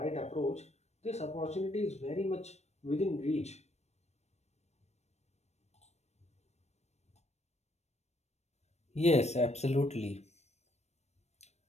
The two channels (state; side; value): late; right; 0.32 ms